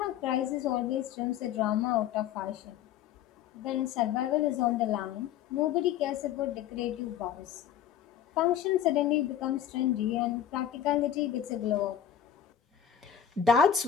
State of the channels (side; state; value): right; quieter; 9.7 dB